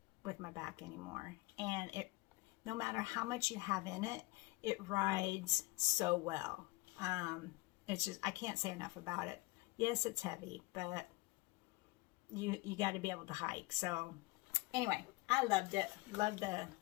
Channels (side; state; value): right; quieter; 22.7 dB